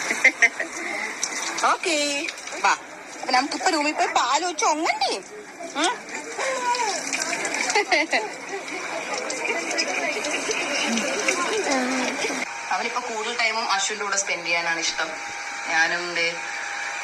ഓക്കേ വാ. അപ്പൊ നമുക്കിപ്പോ റൂമിൽ പോയി പാല് വെച്ച് ഒങ്ങണ്ടേ? അവനിപ്പോ കൂടുതൽ ടൈമും അശ്വിന്റെ കൂടെ സ്പെൻഡ് ചെയ്യാനാണ് ഇഷ്ടം. ഞാനും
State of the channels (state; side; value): identical; both; correlation 1.00